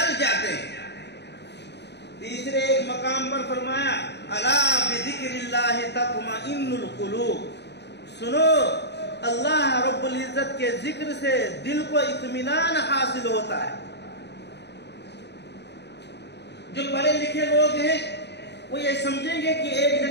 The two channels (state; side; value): late; right; 0.50 ms